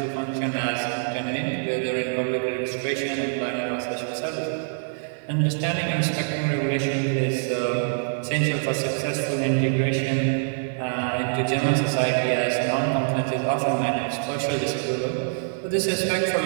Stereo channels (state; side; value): silent; left; 60 dB below the other